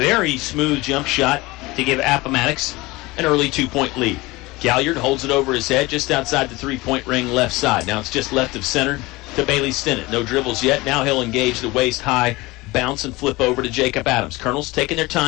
smooth jump shot to give Appomattox an early 2-point lead. Galliard holds it over his head just outside the three-point ring left side. Now it's just left of center to Bailey Stinnett. No dribbles yet. Now he'll engage the waist-high bounce and flip over to Jacob Adams. Colonels taking their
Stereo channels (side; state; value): right; quieter; 21.5 dB